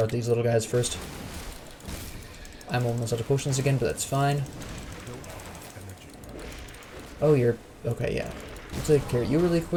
out these little guys first. I'm almost out of potions again, but that's fine. Oh, you're... Okay, yeah. I'll take care of you really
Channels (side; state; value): both; identical; correlation 1.00